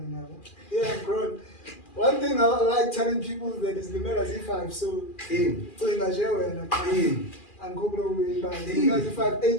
yabo. Yeah, I'm grown. One thing I like telling people that is limela Z5 so cinga nje wena angikho kuyiba zinga Z5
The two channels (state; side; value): late; right; 2.4 ms